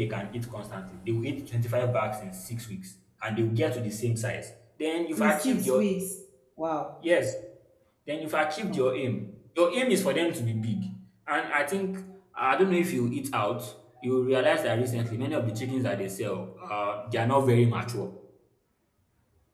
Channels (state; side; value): identical; both; correlation 1.00